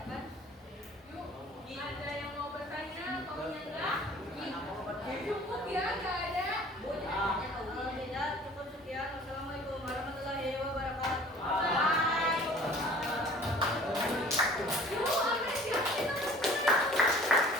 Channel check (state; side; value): normal; both; correlation 0.49